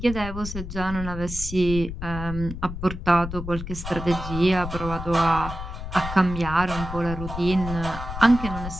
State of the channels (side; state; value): left; noise; rumble, 8 dB below the sound